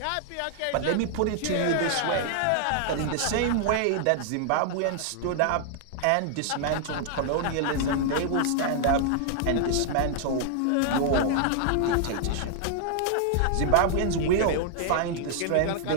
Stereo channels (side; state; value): both; different; correlation 0.00